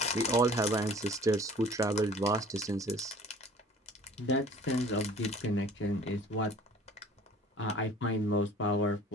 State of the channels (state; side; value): normal; both; correlation 0.48